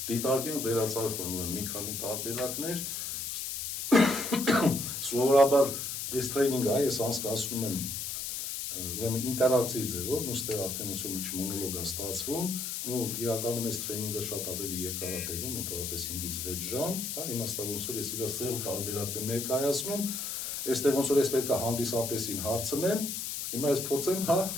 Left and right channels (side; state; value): left; noise; hiss, 4 dB below the sound